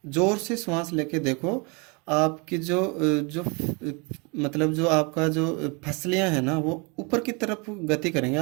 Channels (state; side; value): quieter; left; 31.2 dB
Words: जोर से श्वास लेके देखो, आपकी मतलब जो आपका जो फसलियां हैं ना वो ऊपर की तरफ गति करेंगे।